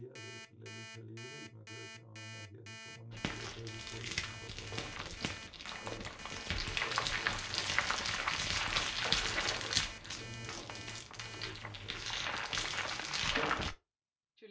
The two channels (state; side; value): identical; both; correlation 1.00